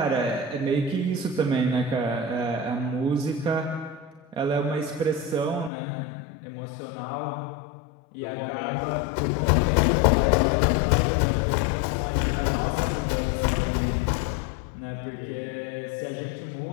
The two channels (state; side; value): drops out; right; at 5.7 s